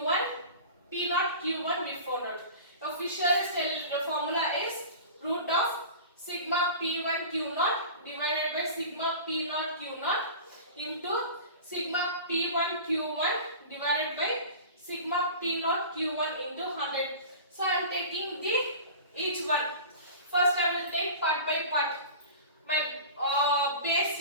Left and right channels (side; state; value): both; inverted; correlation -0.37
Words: P0 Q1 we found out. Official formula is root of sigma P1 Q0 divided by sigma P0 Q0 into sigma P1 Q1 divided by sigma P0 Q1 into 100. So I am taking each one. First I will take part by part. My base